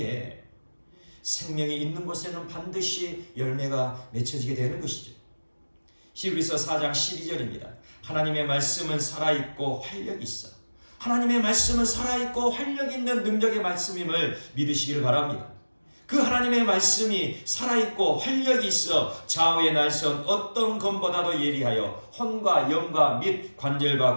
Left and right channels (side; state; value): both; inverted; correlation -1.00